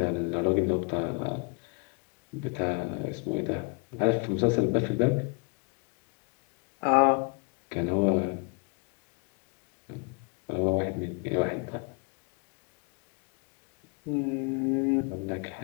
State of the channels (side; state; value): right; quieter; 32.8 dB